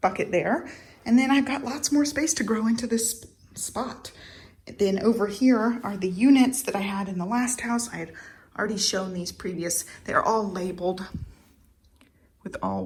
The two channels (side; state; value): both; identical; correlation 1.00